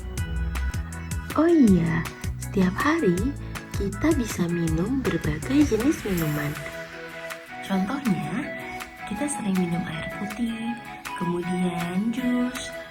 Oh iya, setiap hari kita bisa minum berbagai jenis minuman. Contohnya, kita sering minum air putih, kemudian jus,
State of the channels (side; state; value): both; identical; correlation 1.00